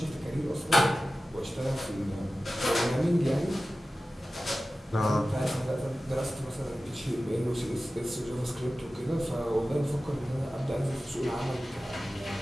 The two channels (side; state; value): both; normal; correlation 0.95